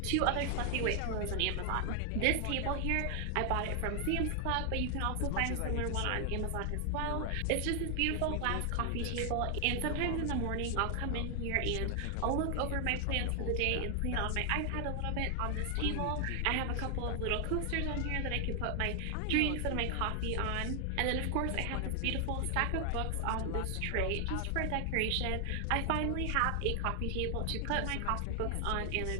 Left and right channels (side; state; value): both; different; correlation 0.00